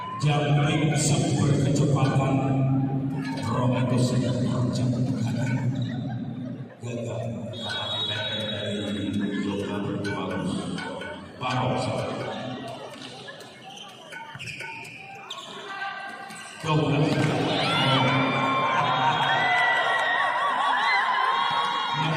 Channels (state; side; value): identical; both; correlation 1.00